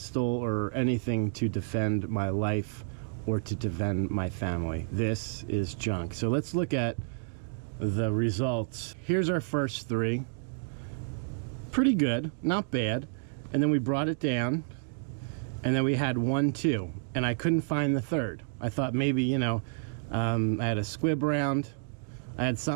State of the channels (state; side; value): silent; left; digital silence